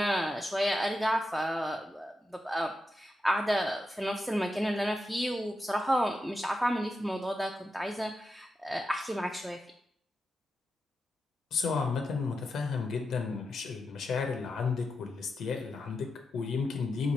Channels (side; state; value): both; normal; correlation 0.88